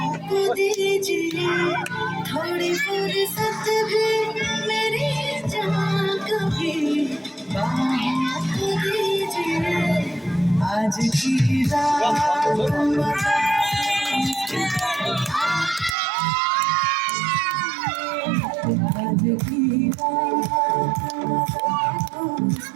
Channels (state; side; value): drops out; left; at 16.0 s